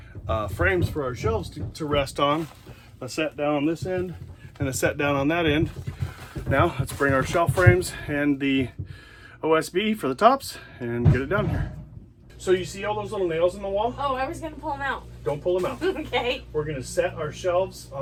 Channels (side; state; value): both; identical; correlation 1.00